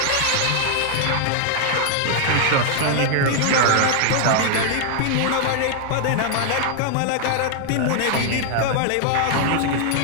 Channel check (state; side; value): different; both; correlation 0.00